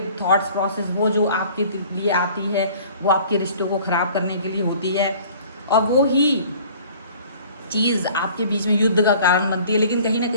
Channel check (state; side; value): inverted; both; correlation -0.50